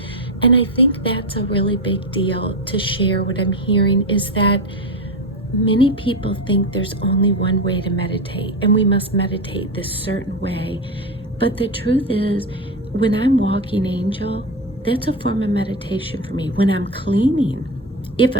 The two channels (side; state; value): both; normal; correlation 0.16